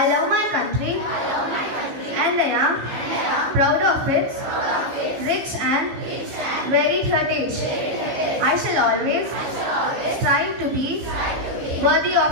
love my country and I am proud of its rich and varied heritage. I shall always strive to be worthy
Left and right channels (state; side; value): late; left; 15 ms